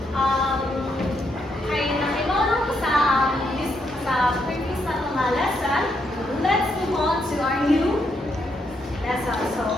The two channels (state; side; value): normal; both; correlation 0.78